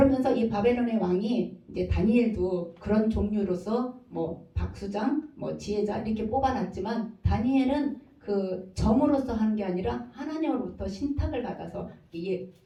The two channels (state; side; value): identical; both; correlation 1.00